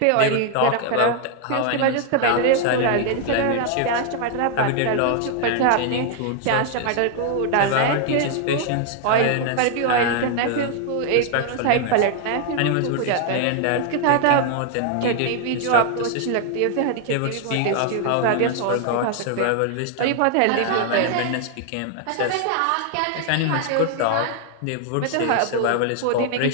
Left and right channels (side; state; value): both; different; correlation 0.00